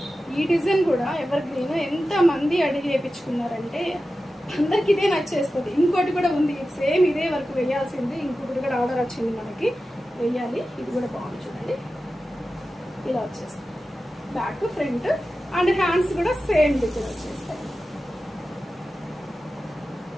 ఈ డిజైన్ కూడా ఎవర్ గ్రీన్ ఎంత మంది అడిగి వేయించుకున్నారంటే అందరికి ఇదే నచ్చేస్తుంది. ఇంకోటి కూడా ఉంది సేమ్ ఇదే వరకు వేయాల్సింది, ఇంకొకటి కూడా ఆర్డర్ వచ్చింది మనకి వేయాలి. ఇది కూడా బాగుంది చూడండి, ఇలా వచ్చేస్తుంది బ్యాక్ ఫ్రంట్ అండ్ హ్యాండ్స్ కూడా సేమ్ డిజైన్ వచ్చేస్తాయి.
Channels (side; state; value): both; normal; correlation 0.93